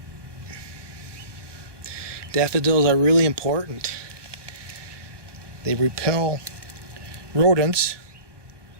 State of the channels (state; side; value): late; left; 1.2 ms